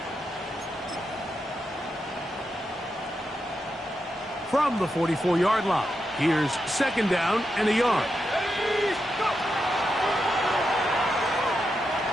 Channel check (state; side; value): normal; both; correlation 0.86